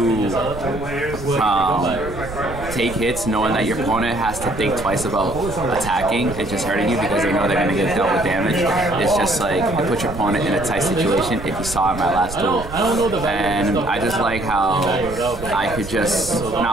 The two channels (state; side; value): noise; right; rumble, 12 dB below the sound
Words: take hits knowing that your opponent has to think twice about attacking and just hurting you because they know they're going to get dealt with damage. It's just like, it puts your opponent in a tight situation if you saw in my last duel. And I just like how I could just